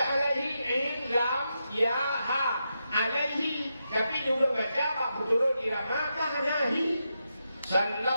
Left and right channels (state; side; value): inverted; both; correlation -0.86